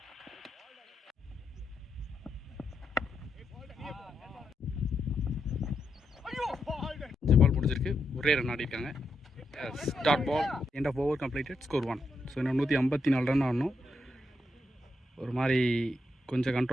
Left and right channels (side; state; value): both; normal; correlation 0.82